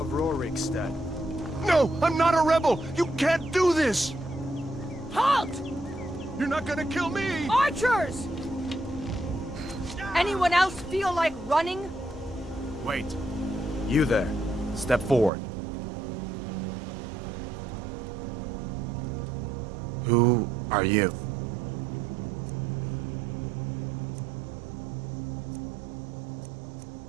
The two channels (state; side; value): drops out; left; at 15.3 s